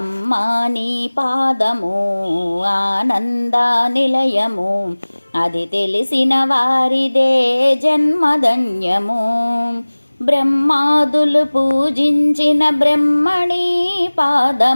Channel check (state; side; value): inverted; both; correlation -1.00